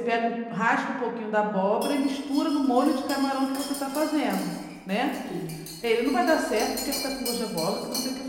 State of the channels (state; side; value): identical; both; correlation 1.00